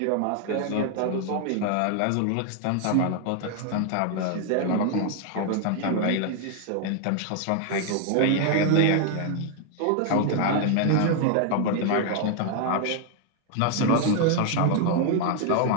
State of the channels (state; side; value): different; both; correlation 0.00